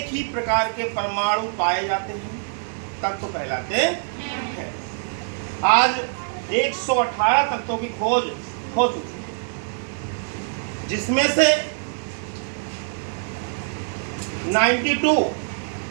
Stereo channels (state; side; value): silent; left; 62 dB below the other